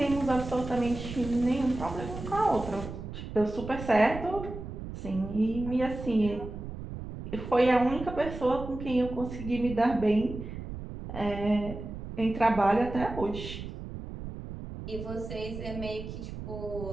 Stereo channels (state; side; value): noise; right; rumble, 9 dB below the sound